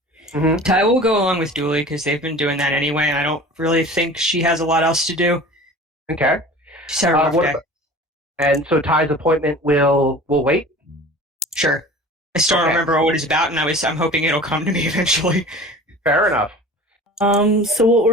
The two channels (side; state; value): both; normal; correlation 0.40